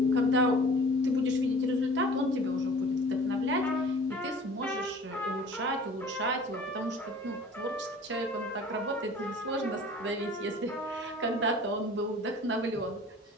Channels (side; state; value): both; normal; correlation 0.46